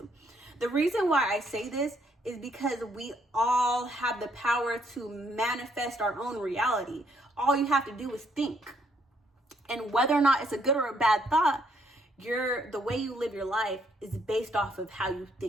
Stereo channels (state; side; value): normal; both; correlation 0.71